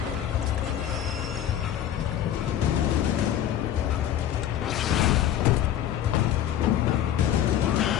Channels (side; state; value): right; quieter; 10.9 dB